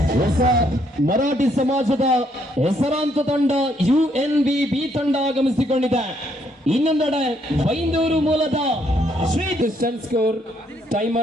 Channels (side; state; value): both; normal; correlation 0.71